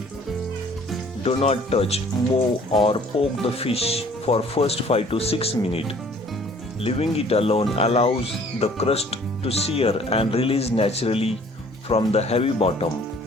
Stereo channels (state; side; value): normal; both; correlation 0.55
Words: Do not touch, move or poke the fish for first 5 to 6 minutes. Leaving it alone allows the crust to sear and release naturally from the heavy bottom.